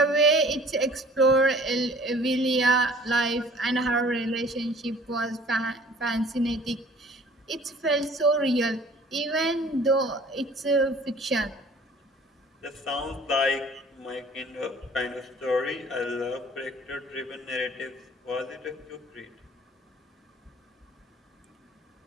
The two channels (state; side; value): normal; both; correlation 0.51